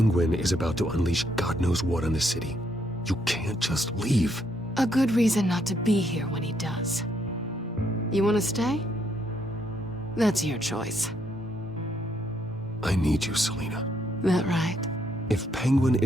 is about to unleash God knows what on the city. You can't just leave. A good reason not to be here when he does. You want to stay? That's your choice. I need you, Selina. That right? If Penguin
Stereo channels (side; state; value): both; normal; correlation 0.73